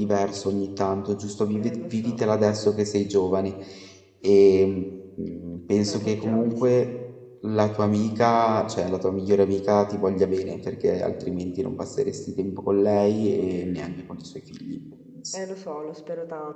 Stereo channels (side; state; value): both; identical; correlation 1.00